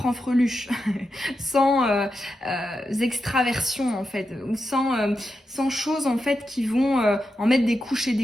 sans extraversion en fait, ou sans choses en fait qui vont en mettre des couches et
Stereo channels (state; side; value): normal; both; correlation 0.88